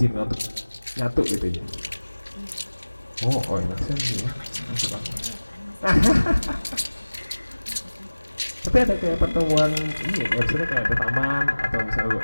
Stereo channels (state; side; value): inverted; both; correlation -1.00